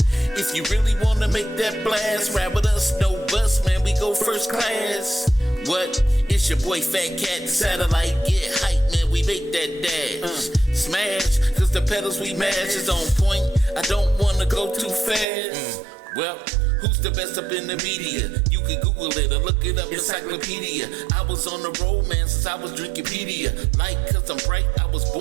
If you really wanna make that blast, ride with us, no bus, man. We go first class. What? It's your boy Fat Cat, the satellite. Get hype, man. We make that dash. Smash, cause the pedals we mash is on point. I don't wanna go too fast. Well, who's the best up in the media? You can Google it or look it up, encyclopedia. I was on the road, man, since I was Drinkipedia. Like, cause I'm bright, I was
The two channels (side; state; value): left; drops out; at 15.2 s